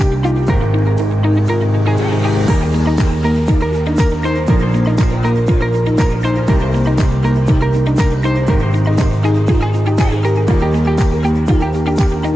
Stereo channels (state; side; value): normal; both; correlation 0.92